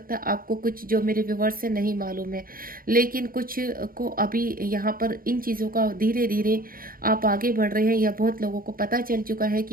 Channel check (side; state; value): left; late; 0.42 ms